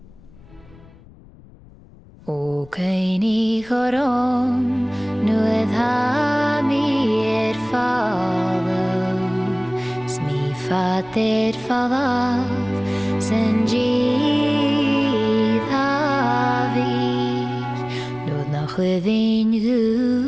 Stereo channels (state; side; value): noise; left; rumble, 24 dB below the sound